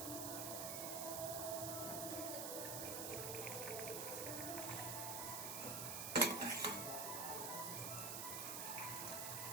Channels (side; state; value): right; noise; hiss, 1 dB below the sound